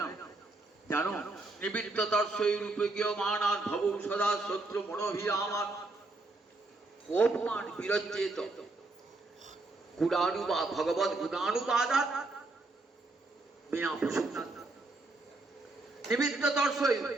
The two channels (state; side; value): quieter; left; 3.1 dB